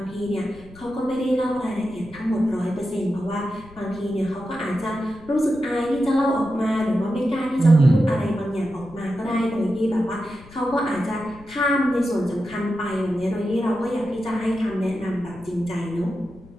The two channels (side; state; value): left; noise; rumble, 21 dB below the sound